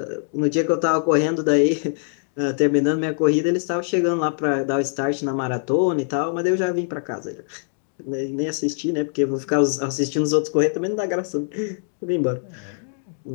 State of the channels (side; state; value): right; silent; digital silence